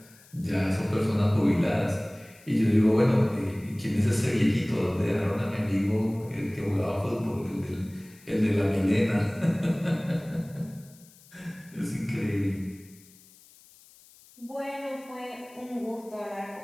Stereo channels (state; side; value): noise; left; hiss, 25 dB below the sound